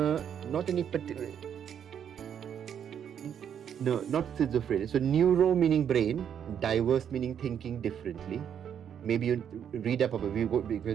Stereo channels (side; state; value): left; quieter; 8.6 dB